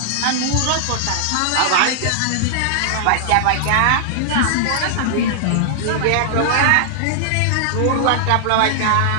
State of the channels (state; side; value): different; both; correlation -0.01